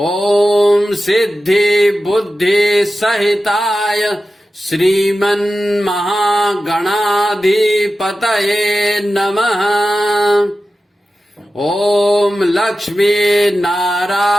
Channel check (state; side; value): normal; both; correlation 0.93